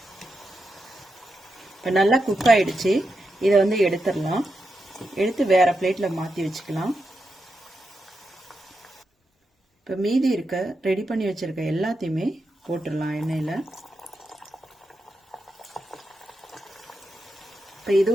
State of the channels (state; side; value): normal; both; correlation 0.86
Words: இப்ப நல்லா குக் ஆயிடுச்சு. இதை எடுத்துடலாம். எடுத்து வேற பிளேட்ல மாத்தி வச்சுக்கலாம். இப்ப மீதி இருக்க ரெடி பண்ணி வச்சிருக்க எல்லாத்தையுமே போட்டுடலாம் எண்ணெயில. இப்ப